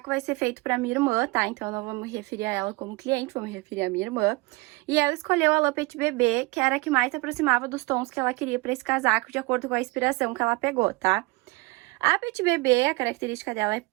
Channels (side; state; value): left; quieter; 24.8 dB